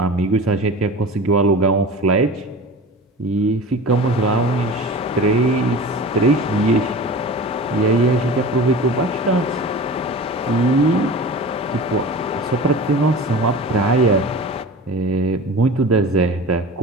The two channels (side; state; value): both; normal; correlation 0.35